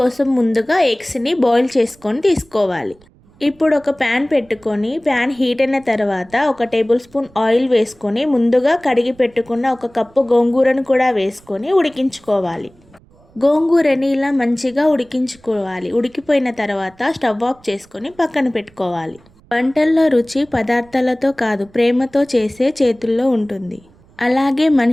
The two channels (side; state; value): right; noise; rumble, 28 dB below the sound